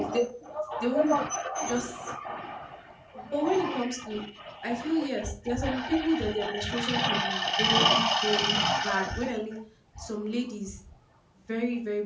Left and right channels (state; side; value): identical; both; correlation 1.00